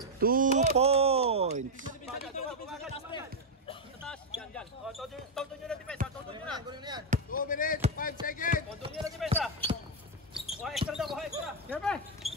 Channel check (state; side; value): normal; both; correlation 0.00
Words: 2 points. Yan. Todo nyo na defense. Todo nyo na. 2 minutes, 5 seconds. O, doon nila si Mesa. Buha extra daw, buha extra. Siyempre.